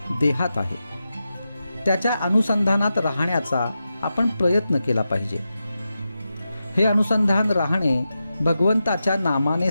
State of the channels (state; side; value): inverted; both; correlation -0.90